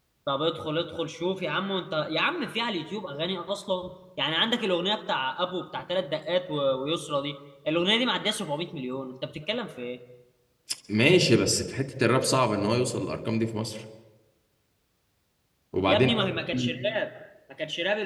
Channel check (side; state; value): both; identical; correlation 1.00